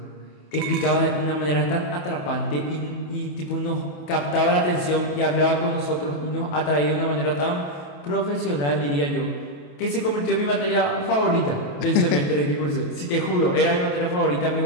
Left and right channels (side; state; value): right; late; 28 ms